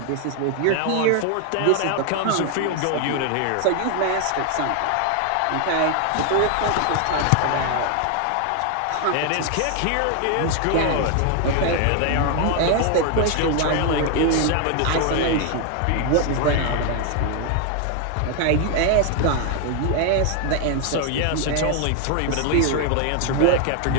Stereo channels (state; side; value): different; both; correlation 0.00